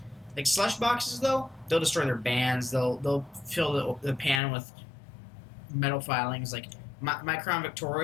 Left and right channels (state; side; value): drops out; right; at 4.4 s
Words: Like slush boxes, though, they'll destroy their bands. They'll fill the pan with metal filings. Like my Crown